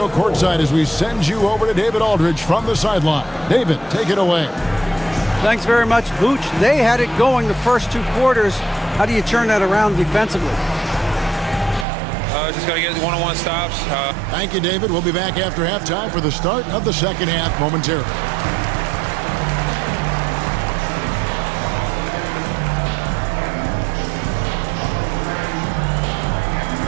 courtside as we send you over to David Aldridge from the sideline. David, take it away. Thanks very much, Booch. They had it going the first 2 quarters. How do you turn that around defensively? Just got to get one-on-one stops. Thank you, David. We'll be back after halftime for the start of the second half momentarily.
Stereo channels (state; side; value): drops out; left; at 11.9 s